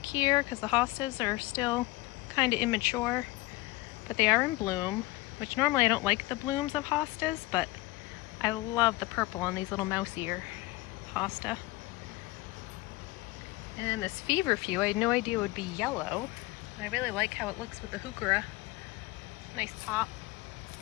here because the hostas are still kind of immature, but they are in bloom, which normally I don't like the blooms of hostas, but I love the purple on these little mouse ear hosta. And then this feverfew, I had no idea it would be yellow, but I really like how it looks with the heuchera. Nice pop.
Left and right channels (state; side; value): quieter; right; 20.0 dB